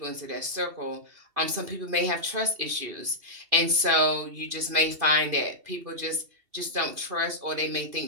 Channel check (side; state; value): left; late; 2.7 ms